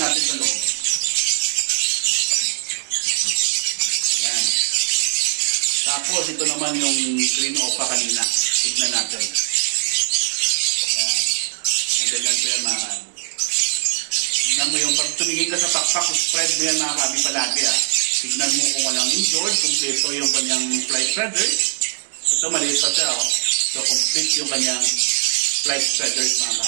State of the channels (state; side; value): silent; left; digital silence